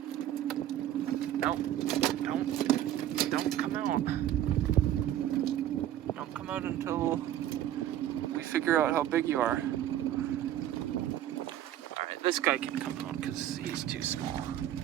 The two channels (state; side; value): quieter; left; 12.0 dB